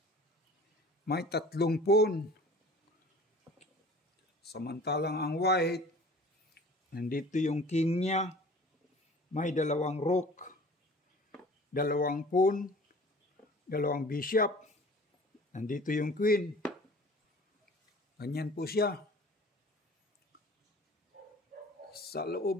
may 3 pawn. Samantalang ang white, nandito yung king niya, may 2 rook, 2 pawn, 2 bishop, nandito yung queen. Ganyan po siya. Sa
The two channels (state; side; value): normal; both; correlation 0.46